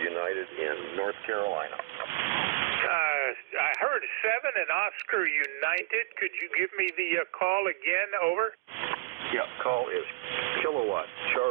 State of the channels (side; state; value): left; quieter; 25.6 dB